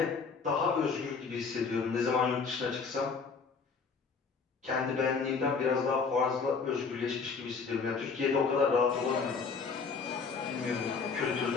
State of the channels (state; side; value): quieter; right; 5.2 dB